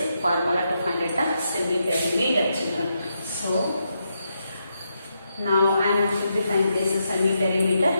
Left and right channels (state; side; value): inverted; both; correlation -0.82